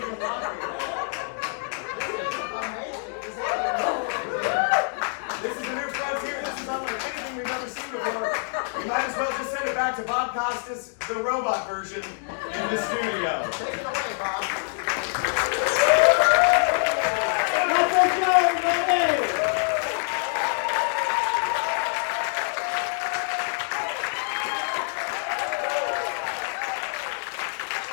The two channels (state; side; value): silent; right; 57 dB below the other